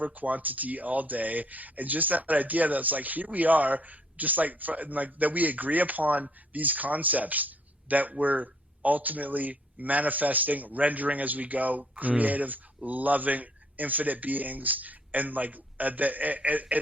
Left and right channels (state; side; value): normal; both; correlation 0.64